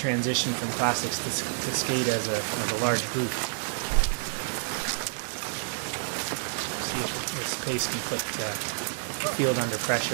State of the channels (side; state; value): left; silent; 59 dB below the other